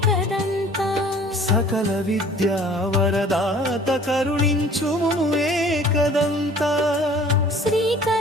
సకల విద్యా వరదాత కరుణించుము ఏకదంత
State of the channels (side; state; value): both; normal; correlation 0.50